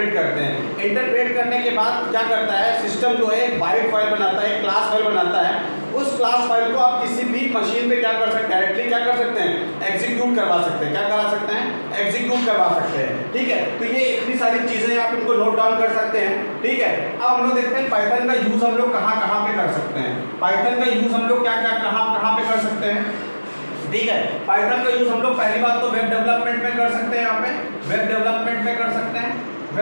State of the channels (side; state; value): both; inverted; correlation -1.00